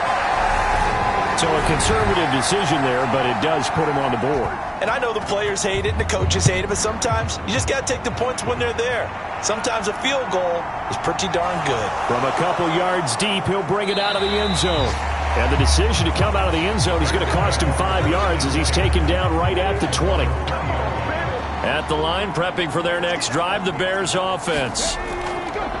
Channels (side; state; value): both; identical; correlation 1.00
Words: So a conservative decision there, but it does put him on the board. And I know the players hate it and the coaches hate it, but sometimes you just got to take the points when they're there. Sometimes a field goal is pretty darn good. From a couple yards deep, he'll bring it out of the end zone. And the decision to come out of the end zone is going to cost him 5 yards as he's taken down right at the 20. At the line, prepping for their next drive, the Bears offense.